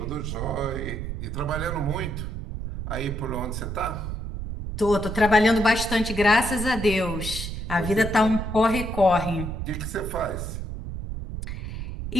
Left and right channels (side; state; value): right; noise; rumble, 5 dB below the sound